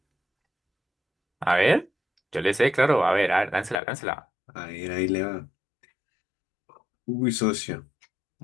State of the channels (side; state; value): right; drops out; at 3.8 s